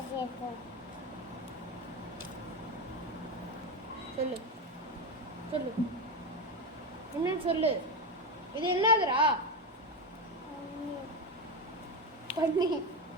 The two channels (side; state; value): both; normal; correlation 0.15